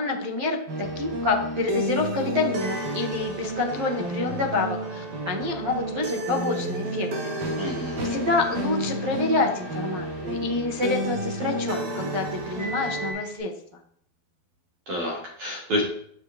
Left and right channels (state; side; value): late; left; 12 ms